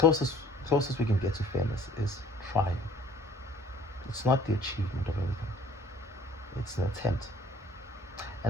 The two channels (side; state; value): both; normal; correlation 0.54